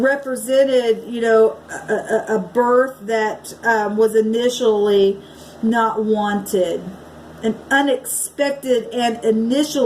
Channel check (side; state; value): both; identical; correlation 1.00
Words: you know, a birth that was initially not wanted. An unexpected and